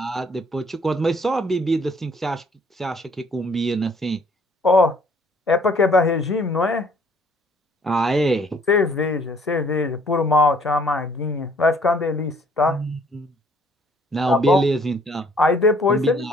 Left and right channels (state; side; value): normal; both; correlation 0.60